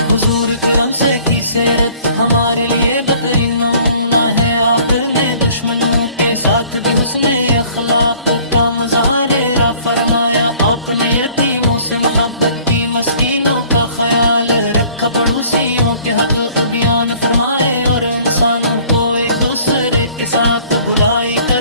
حضور کرم سے کی سیرت ہمارے لیے بہترین نمونہ ہے. آپ نے دشمنوں کے ساتھ بھی حسن اخلاق کا مظاہرہ فرمایا. آپ نے یتیموں سے محبت کی، مسکینوں کا خیال رکھا، پڑوسیوں کے حق بیان فرمائے، اور انسانوں کو ایک دوسرے کے ساتھ بھلائی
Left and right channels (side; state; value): both; inverted; correlation -0.54